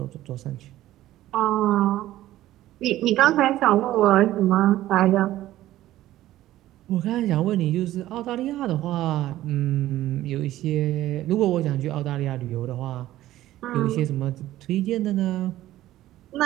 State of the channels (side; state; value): left; quieter; 14.6 dB